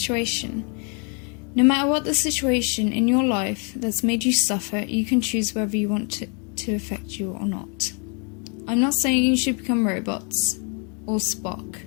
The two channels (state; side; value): quieter; right; 37.8 dB